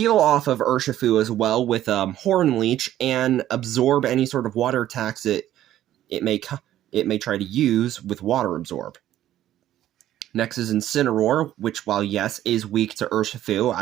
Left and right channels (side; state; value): left; quieter; 12.7 dB